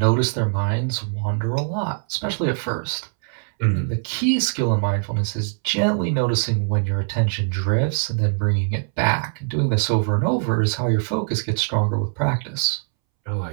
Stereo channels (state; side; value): silent; left; 64 dB below the other